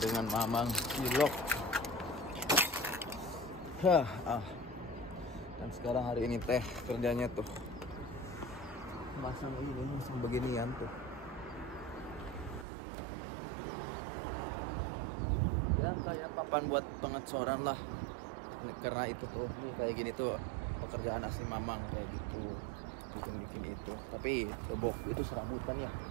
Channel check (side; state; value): left; drops out; at 12.7 s